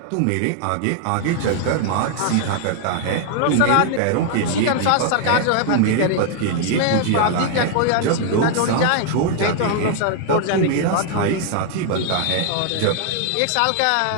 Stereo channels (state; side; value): different; both; correlation 0.00